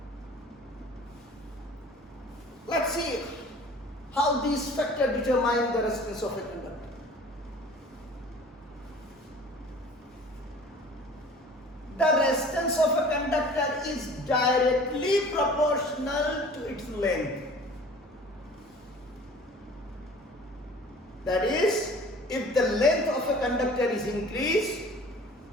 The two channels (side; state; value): both; normal; correlation 0.46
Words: Let's see how these factors determine the resistance of a conductor. The resistance of a conductor is directly proportional to its length. That is, if the length of a conductor is increased,